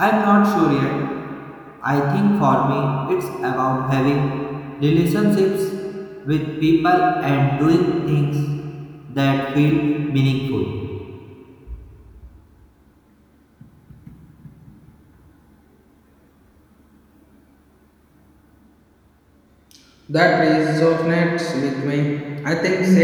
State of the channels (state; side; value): identical; both; correlation 1.00